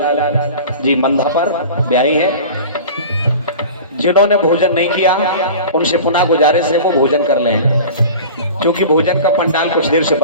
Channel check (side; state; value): both; inverted; correlation -0.37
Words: जी मंधा पर ब्याही है। जिन्होंने भोजन नहीं किया उनसे पुनः गुजारिश है वो भोजन कर लें, क्योंकि भोजन का पंडाल कुछ देर से